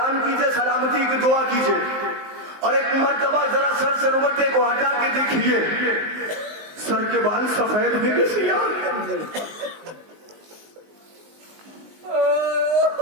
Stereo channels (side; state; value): left; late; 19 ms